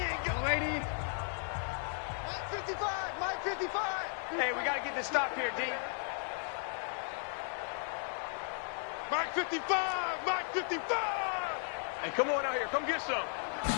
ain't got lady. Mike 55. Mike 55. Hey, we got to get this stop here, D. Mike 55. Mike 55. Hey, come on out here. Come get some.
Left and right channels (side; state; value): right; silent; 54 dB below the other